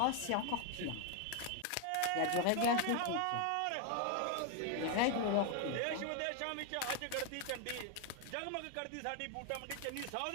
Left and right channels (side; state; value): both; different; correlation 0.01